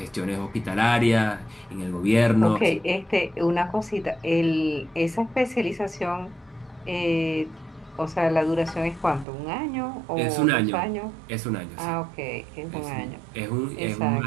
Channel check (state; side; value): drops out; left; at 9.2 s